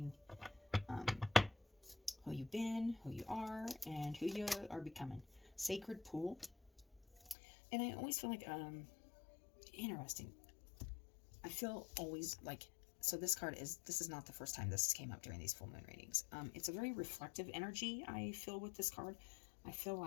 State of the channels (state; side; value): drops out; right; at 7.4 s